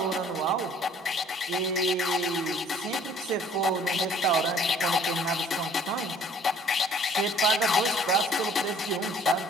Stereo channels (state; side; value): normal; both; correlation 0.56